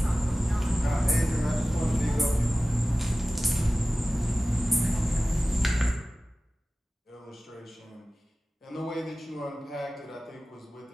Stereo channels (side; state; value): both; normal; correlation 0.96